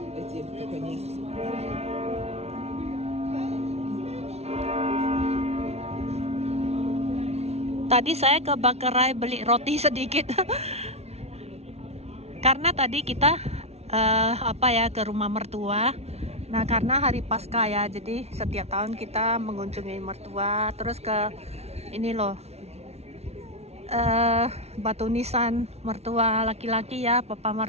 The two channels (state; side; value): late; left; 0.31 ms